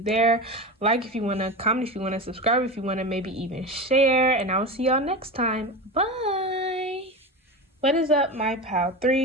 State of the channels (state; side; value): normal; both; correlation 0.24